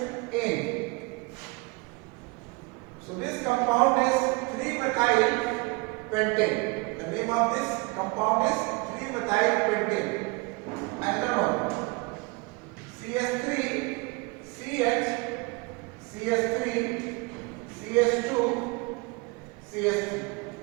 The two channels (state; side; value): quieter; left; 27.7 dB